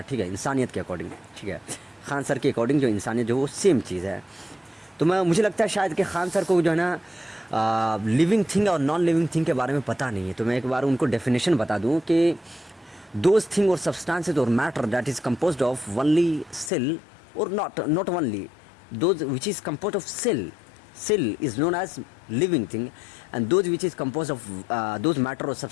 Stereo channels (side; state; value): right; drops out; at 16.7 s